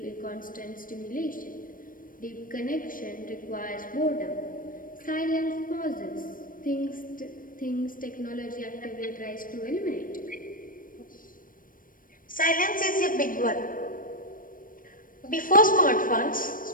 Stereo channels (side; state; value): right; late; 0.40 ms